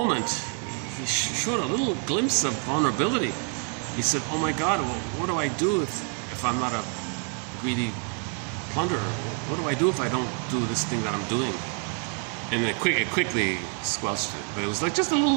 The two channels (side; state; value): left; quieter; 38.2 dB